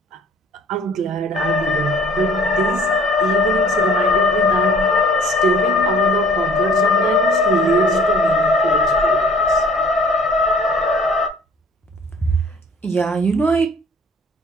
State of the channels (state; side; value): normal; both; correlation 0.52